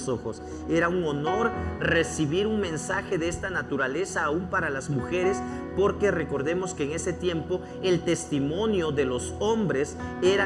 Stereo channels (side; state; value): both; identical; correlation 1.00